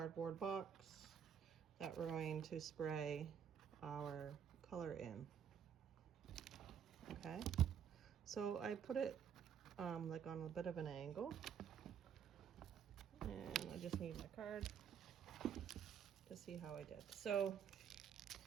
box that we're going to spray our color in. Okay, so I put it like on a bit of an angle, and I just need my card to see how I did. So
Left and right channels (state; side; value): quieter; left; 8.1 dB